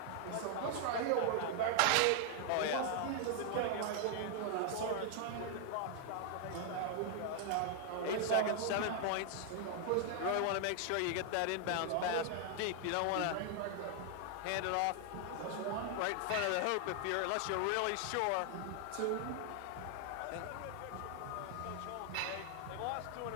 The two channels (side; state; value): both; different; correlation 0.00